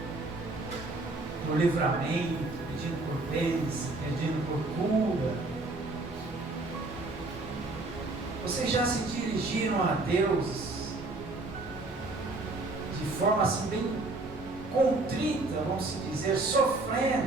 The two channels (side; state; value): left; quieter; 3.1 dB